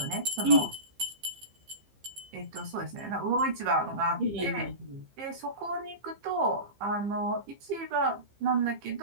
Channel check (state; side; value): late; left; 15 ms